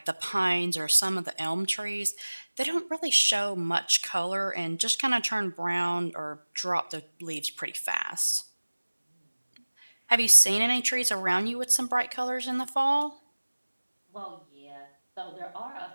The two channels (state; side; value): inverted; both; correlation -1.00